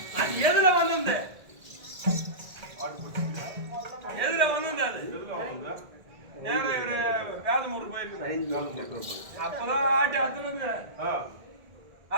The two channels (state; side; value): late; left; 1.8 ms